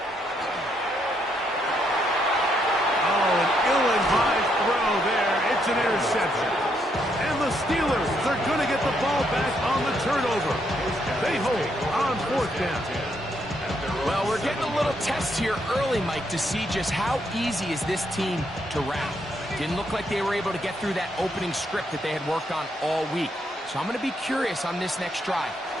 Oh, an ill-advised throw there. It's an interception. And the Steelers are going to get the ball back on the turnover. They hold on fourth down. Well, we're getting a little test here early, Mike, to see just how easy is this team to rout. Didn't look like they were able to get through that opening script that they had worked on all week. So I'm going to be curious on this next drive.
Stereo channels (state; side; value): normal; both; correlation 0.75